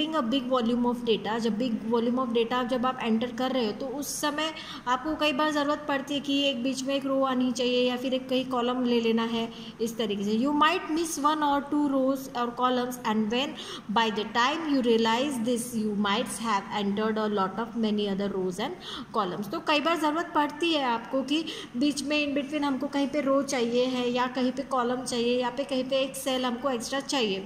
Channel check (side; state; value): both; identical; correlation 1.00